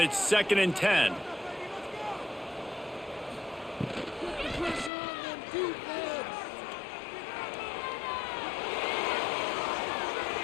2nd and 10.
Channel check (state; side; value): drops out; right; at 4.9 s